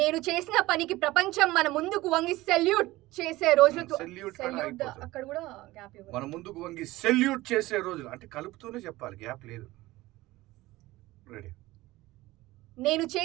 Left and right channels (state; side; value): quieter; left; 18.5 dB